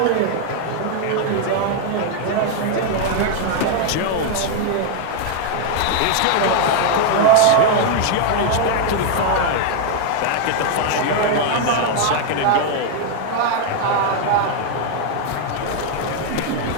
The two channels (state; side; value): different; both; correlation 0.00